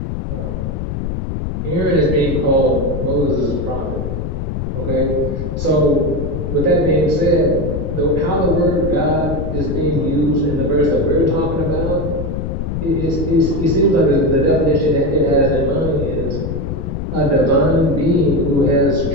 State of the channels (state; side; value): noise; left; rumble, 3 dB below the sound